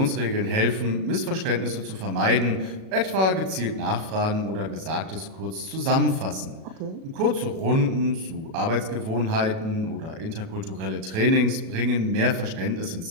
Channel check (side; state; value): left; late; 37 ms